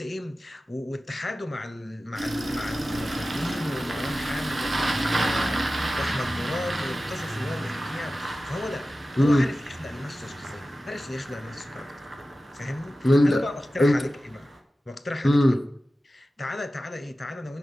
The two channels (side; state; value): both; normal; correlation 0.95